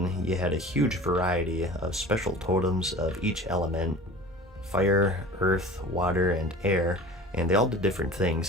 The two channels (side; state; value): both; normal; correlation 0.40